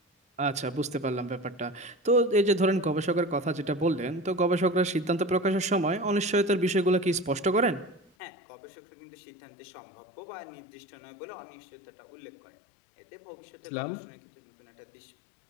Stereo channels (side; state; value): right; drops out; at 8.1 s